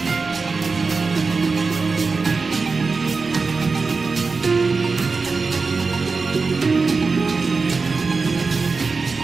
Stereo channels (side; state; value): left; quieter; 4.4 dB